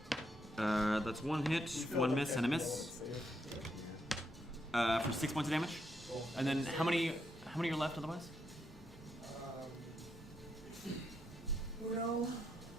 That's 1 hit, 1 miss, and a miss. For 6 points of damage. And then how many are left otherwise? Uno,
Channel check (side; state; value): both; normal; correlation 0.79